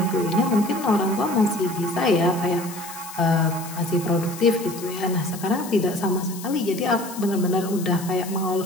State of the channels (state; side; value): noise; left; hiss, 14 dB below the sound